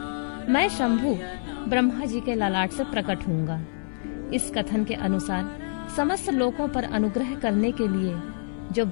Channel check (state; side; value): silent; right; 61 dB below the other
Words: मैं शंभु ब्रह्मा जी के ललाट से प्रकट होऊंगा। इस कथन के अनुसार समस्त लोकों पर अनुग्रह करने के लिए जो